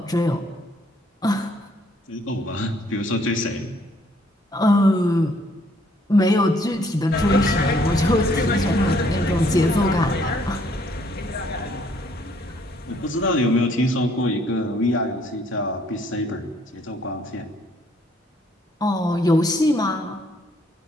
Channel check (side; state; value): both; normal; correlation 0.65